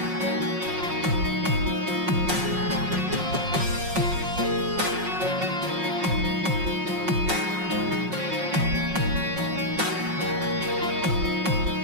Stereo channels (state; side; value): late; left; 5.5 ms